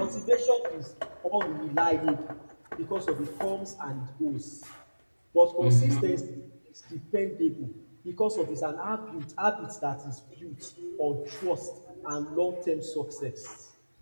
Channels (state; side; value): inverted; both; correlation -1.00